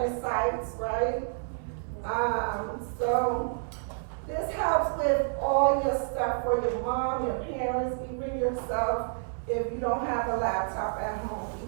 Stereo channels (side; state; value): left; silent; 58 dB below the other